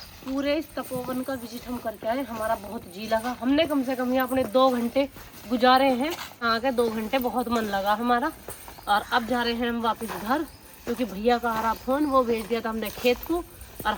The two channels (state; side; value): identical; both; correlation 1.00